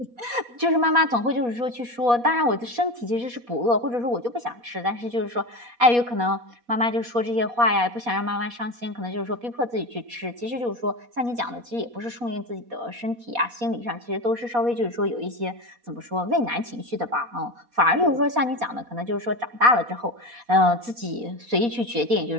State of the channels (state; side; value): late; left; 4.2 ms